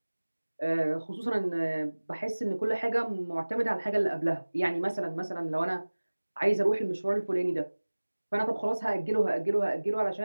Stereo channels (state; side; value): inverted; both; correlation -1.00